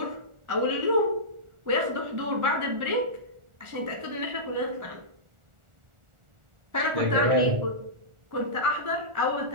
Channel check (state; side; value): late; left; 1.4 ms